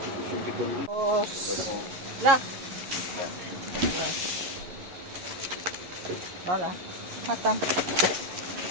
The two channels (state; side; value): late; left; 11 ms